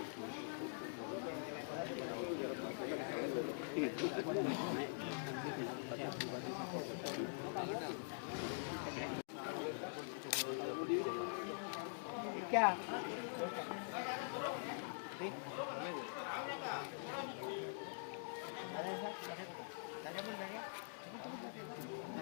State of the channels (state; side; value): silent; right; digital silence